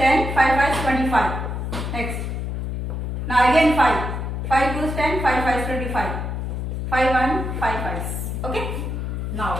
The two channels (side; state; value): left; noise; hum, 3 dB below the sound